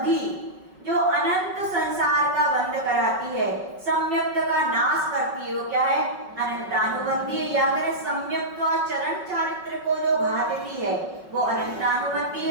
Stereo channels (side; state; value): left; late; 5.4 ms